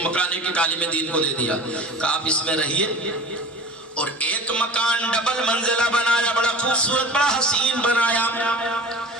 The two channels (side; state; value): both; normal; correlation 0.38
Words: مکان ایک ایک عالم دین کو دے دیا. کہا آپ اس میں رہیے. اور ایک مکان ڈبل منزلہ بنایا, بڑا خوبصورت بڑا حسین بنایا.